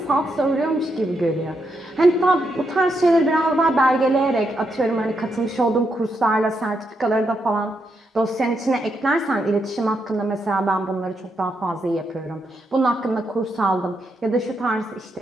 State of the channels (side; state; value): both; normal; correlation 0.81